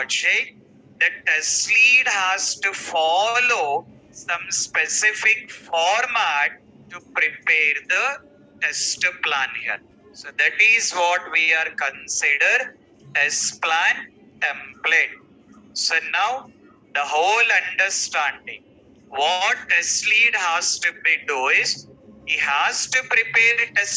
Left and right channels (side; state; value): both; identical; correlation 1.00